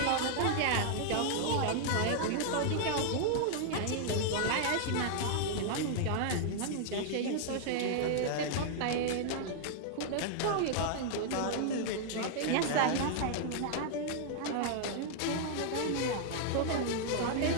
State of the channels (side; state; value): both; different; correlation -0.01